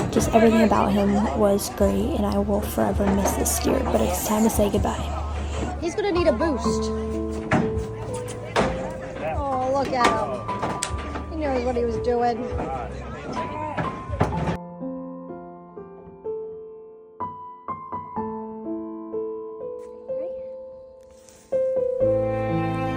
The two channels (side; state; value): both; identical; correlation 1.00